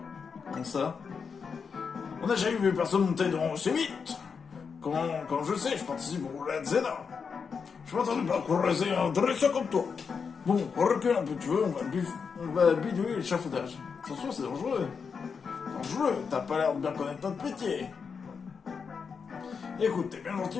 Comment ça? On n'a jamais vu personne monter dans aussi vite. Quand je sais, je participe au Red Zena. Je m'attendais pas à croiser un dresseur comme toi. Bon, on recule un peu, tu veux, on va bidouiller l'échafaudage. Attention, c'est dangereux. Dangereux, t'as pas l'air de bien connaître notre métier. Écoute, t'es bien gentil,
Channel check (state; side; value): quieter; right; 5.8 dB